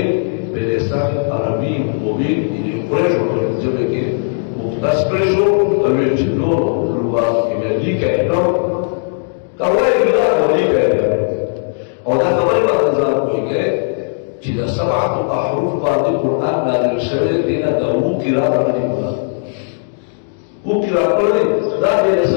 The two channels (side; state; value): right; silent; digital silence